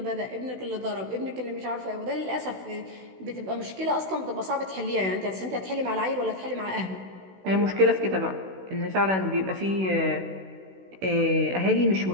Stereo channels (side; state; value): left; late; 16 ms